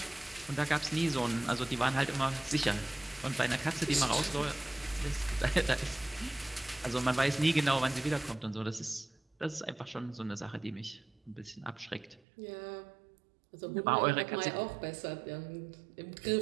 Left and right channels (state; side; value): drops out; left; at 12.2 s